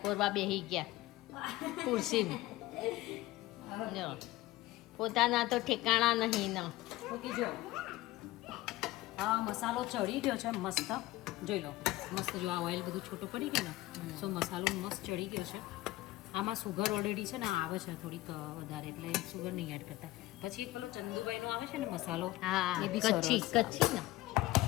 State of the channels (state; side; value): quieter; right; 17.9 dB